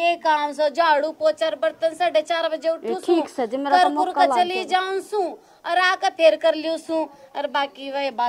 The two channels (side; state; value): both; identical; correlation 1.00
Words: काम सो झाड़ू पोछा बर्तन 4:30 बजे उठू सू, ठीक से मेरा तो मौका चली जाऊं सू और आकर फेर कर लियो सू। और बाकी वह